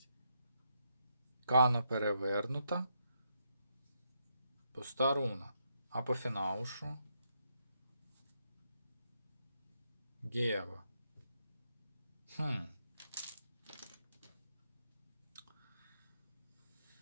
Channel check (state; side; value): inverted; both; correlation -0.79